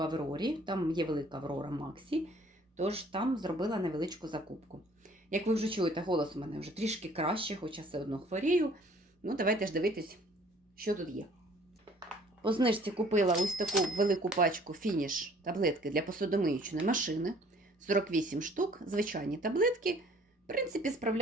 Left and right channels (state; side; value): normal; both; correlation 0.56